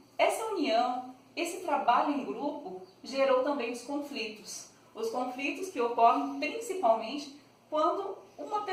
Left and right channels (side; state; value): both; identical; correlation 1.00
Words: essa união, esse trabalho em grupo gerou também os conflitos que ocorrem principalmente quando uma